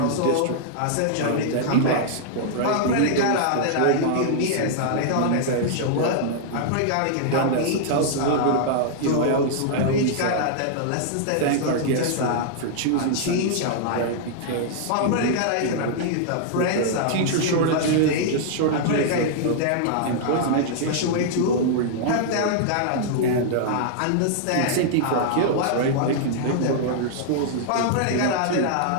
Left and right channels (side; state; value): both; different; correlation -0.01